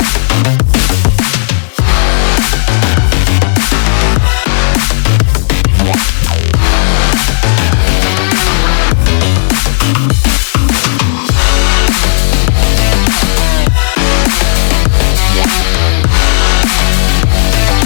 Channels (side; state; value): right; silent; digital silence